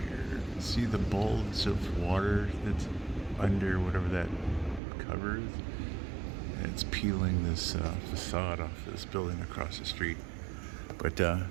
See the bulge of water that's under whatever that covers? It's peeling this facade off this building across the street. But it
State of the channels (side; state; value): left; drops out; at 4.8 s